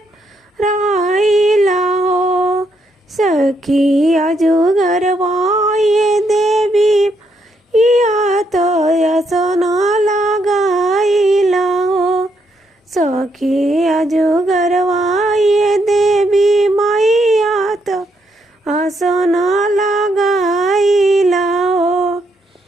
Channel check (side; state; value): both; normal; correlation 0.76